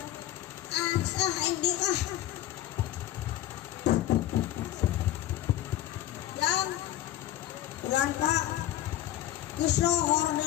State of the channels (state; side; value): quieter; right; 13.2 dB